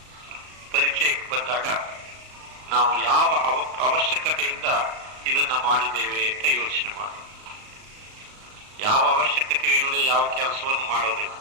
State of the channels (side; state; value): left; late; 38 ms